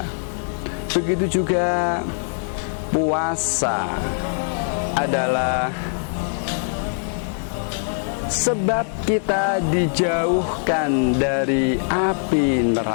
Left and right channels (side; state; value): right; silent; digital silence